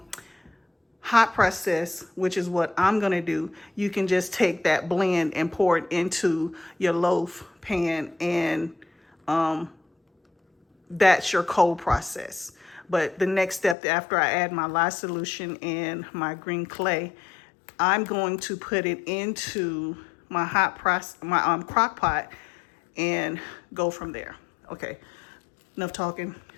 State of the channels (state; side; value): drops out; right; at 13.8 s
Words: hot process, which is what I'm gonna do. You can just take that blend and pour it into your loaf pan, and that's your cold process. But the next step after I add my lye solution and my green clay, I'm going to put it into my crock pot and go from there. Okay, enough talking.